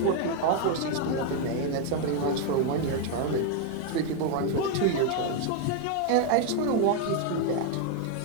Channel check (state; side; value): different; both; correlation 0.01